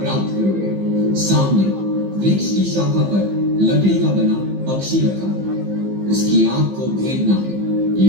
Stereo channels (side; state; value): left; late; 15 ms